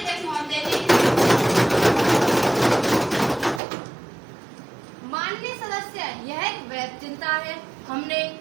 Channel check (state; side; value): drops out; left; at 3.6 s